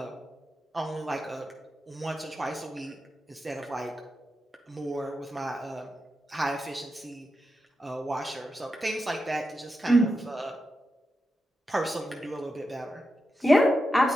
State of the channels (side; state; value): both; normal; correlation 0.88